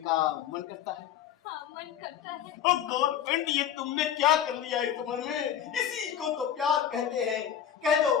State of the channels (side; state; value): right; quieter; 9.6 dB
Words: मन करता है। हाँ, मन करता है। गवर्नमेंट, ये तुमने क्या कर लिया इस उम्र में? इसी को तो प्यार कहते हैं। कह दो,